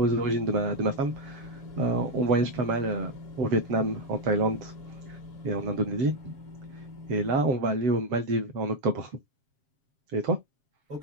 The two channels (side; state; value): left; late; 7.4 ms